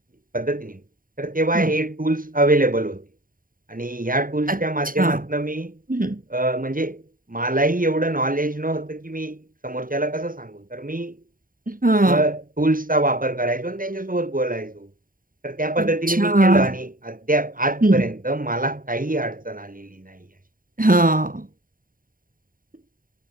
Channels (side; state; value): left; late; 0.41 ms